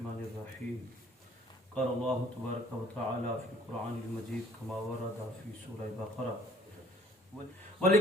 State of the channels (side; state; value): both; normal; correlation 0.57